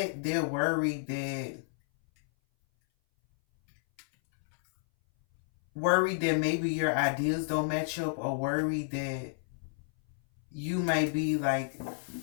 they're worried that maybe your ideas don't match up, or worried that you may be like,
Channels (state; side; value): silent; right; 57 dB below the other